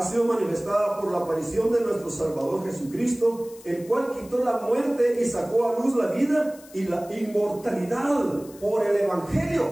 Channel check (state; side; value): noise; left; hiss, 22 dB below the sound